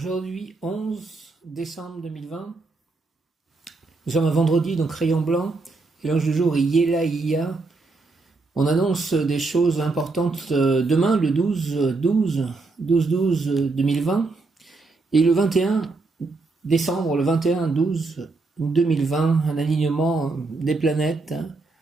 11 décembre 2020, nous sommes un vendredi, donc rayon blanc, et l'ange du jour est Yelaïa. On annonce des choses importantes demain, le 12-12-2020, et le 21 décembre, le 21-12-2020, un alignement des planètes,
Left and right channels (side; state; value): left; quieter; 3.6 dB